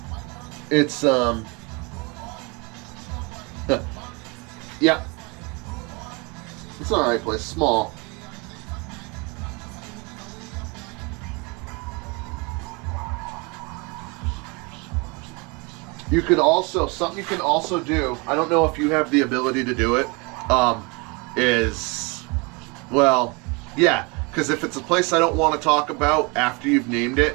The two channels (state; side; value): quieter; left; 29.4 dB